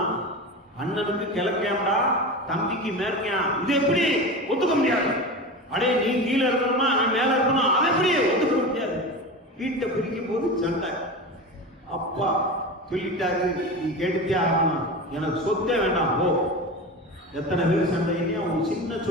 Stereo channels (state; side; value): normal; both; correlation 0.27